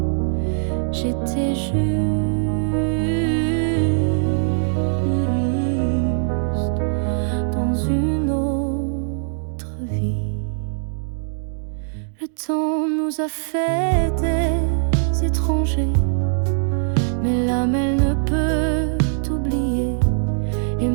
J'étais juste dans une autre vie. Le temps nous a fait des étrangers, mais l'âme elle ne peut t'oublier. Et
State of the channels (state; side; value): silent; left; digital silence